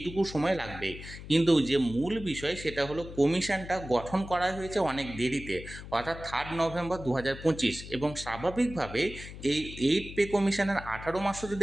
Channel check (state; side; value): noise; left; hum, 12 dB below the sound